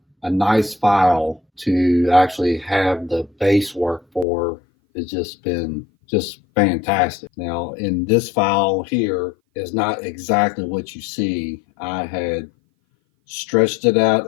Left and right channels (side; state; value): right; drops out; at 4.2 s